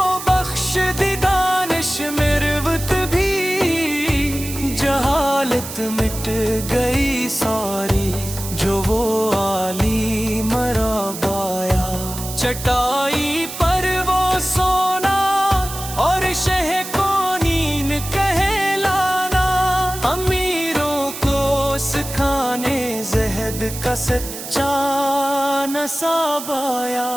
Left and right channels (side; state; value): right; noise; hiss, 9 dB below the sound